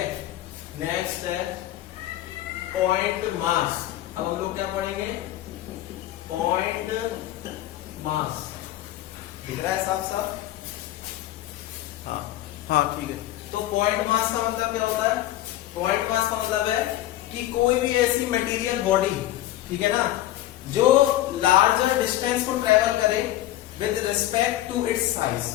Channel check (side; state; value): right; quieter; 14.5 dB